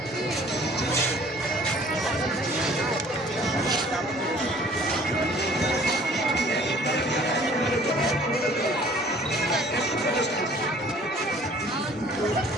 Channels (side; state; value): both; normal; correlation 0.53